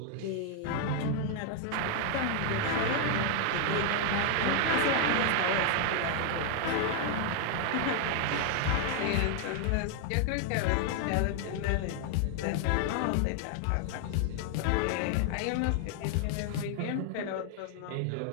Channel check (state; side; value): different; both; correlation 0.00